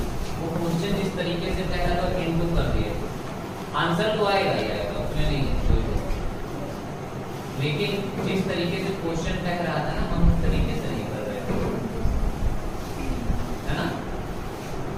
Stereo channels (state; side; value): identical; both; correlation 1.00